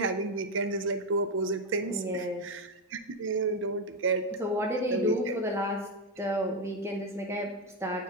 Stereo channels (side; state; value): both; normal; correlation 0.08